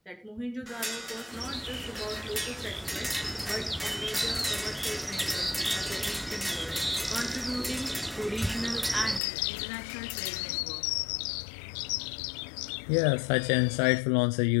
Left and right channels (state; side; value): drops out; right; at 9.2 s